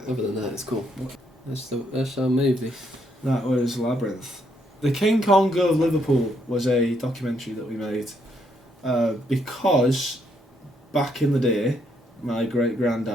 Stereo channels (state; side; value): normal; both; correlation 0.74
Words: Yeah. other than that, it's cool. That's our movie. That was Labyrinth. The King Kong of Liverpool was a documentary that we made because back in the day, my great